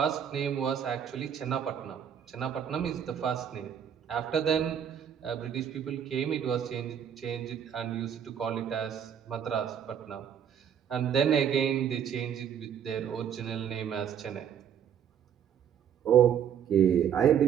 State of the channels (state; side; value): quieter; left; 8.6 dB